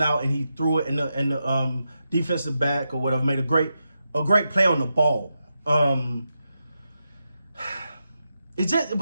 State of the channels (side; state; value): both; inverted; correlation -0.88